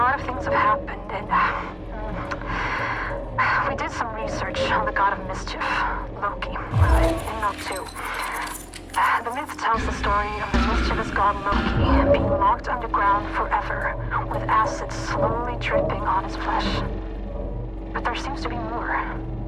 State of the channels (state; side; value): identical; both; correlation 1.00